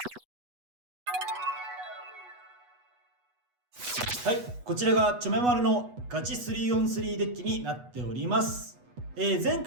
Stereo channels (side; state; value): left; late; 8.2 ms